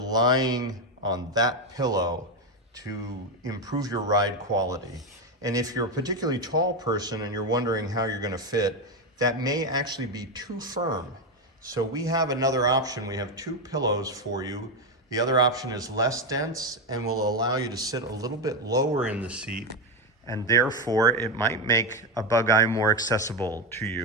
on that pillow to improve your ride quality. And if you're a particularly tall person and you're wondering how you're going to fit, that may actually be too firm. So we have another option. We have two pillows for you. The other option is less dense and will allow you to sit a little bit lower in the seat, and therefore it might make a Bug Eye more accessible to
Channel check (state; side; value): normal; both; correlation 0.10